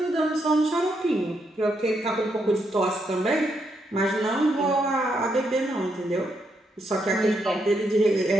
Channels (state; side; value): normal; both; correlation 0.79